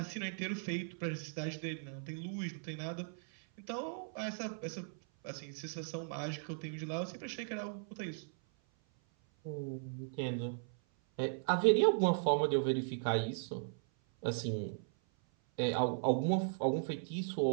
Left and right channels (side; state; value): left; silent; 53 dB below the other